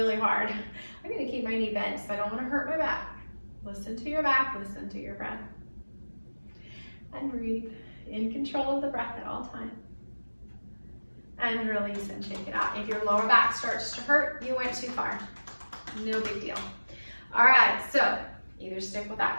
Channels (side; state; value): both; inverted; correlation -1.00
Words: hard. I'm gonna keep my knee bent because I don't wanna hurt my back. Listen to your back, listen to your breath. And breathe, in control of the breath at all times. And release and shake it out. If your lower back starts to hurt, you went too far. No big deal. All right, so either stick with